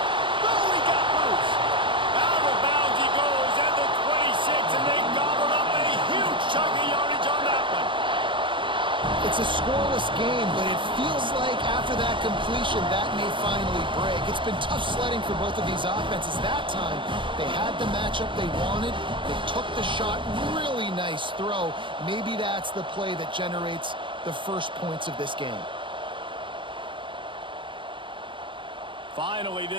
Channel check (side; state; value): left; late; 0.24 ms